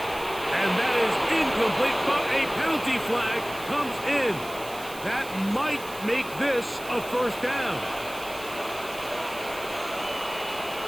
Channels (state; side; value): noise; right; hiss, 15 dB below the sound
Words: And that is incomplete, but a penalty flag comes in. That might make this a 1st down.